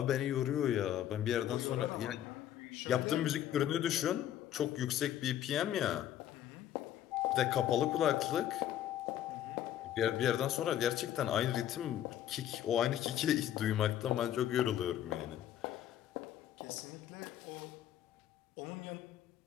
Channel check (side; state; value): right; quieter; 11.5 dB